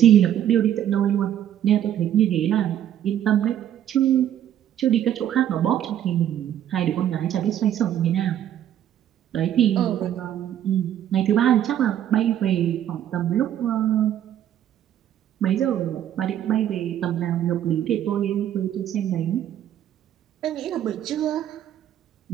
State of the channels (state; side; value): quieter; left; 10.8 dB